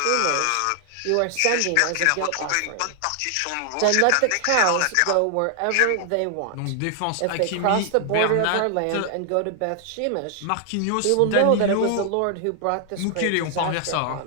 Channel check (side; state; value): both; different; correlation 0.00